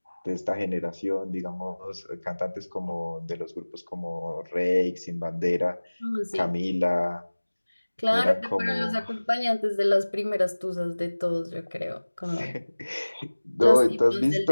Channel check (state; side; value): inverted; both; correlation -1.00